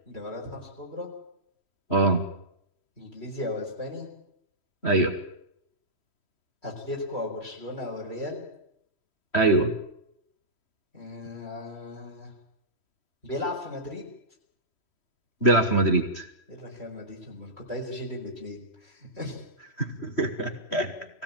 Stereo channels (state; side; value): late; right; 3.1 ms